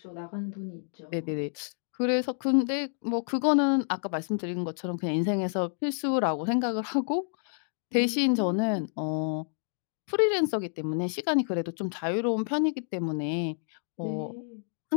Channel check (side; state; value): right; silent; digital silence